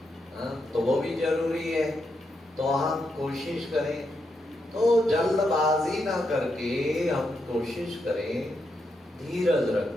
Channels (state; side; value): normal; both; correlation 0.82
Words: तो वो भी जरूरी है। तो हम कोशिश करें, तो जल्दबाजी ना करके हम कोशिश करें, धीरज